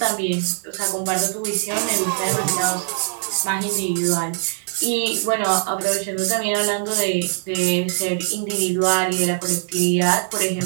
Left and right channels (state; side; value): silent; left; digital silence